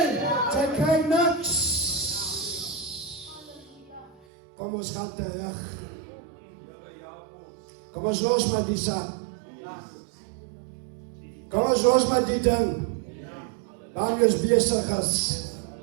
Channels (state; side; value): drops out; left; at 4.2 s